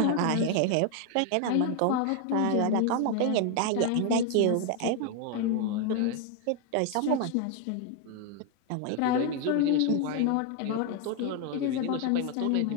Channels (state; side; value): different; both; correlation 0.01